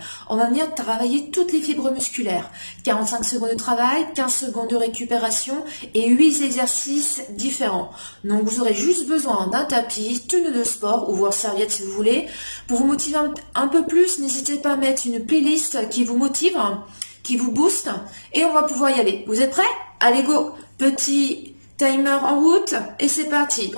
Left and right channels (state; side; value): inverted; both; correlation -1.00